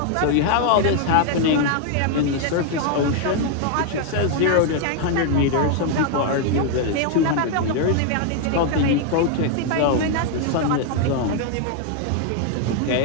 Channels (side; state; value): both; different; correlation 0.00